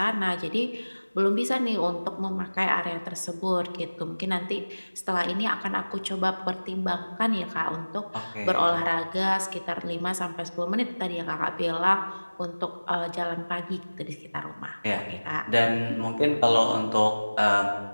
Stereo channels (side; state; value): both; inverted; correlation -1.00